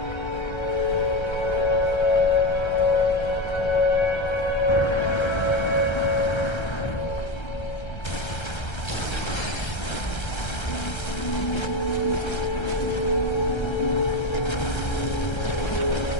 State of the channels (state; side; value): late; right; 1.3 ms